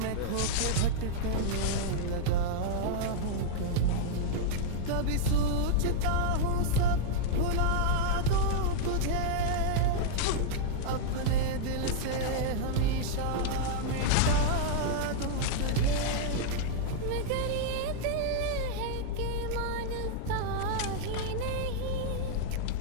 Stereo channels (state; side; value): different; both; correlation -0.01